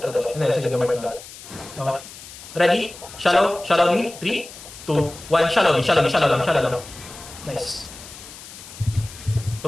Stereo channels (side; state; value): left; noise; hiss, 16 dB below the sound